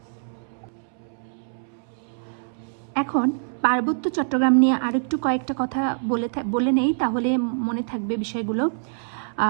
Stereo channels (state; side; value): silent; left; 62 dB below the other